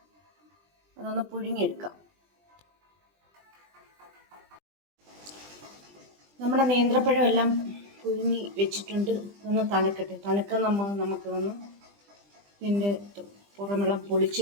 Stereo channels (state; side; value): late; left; 20 ms